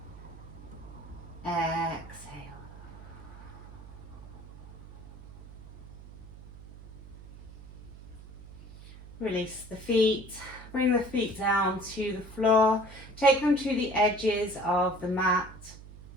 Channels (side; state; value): right; noise; hum, 16 dB below the sound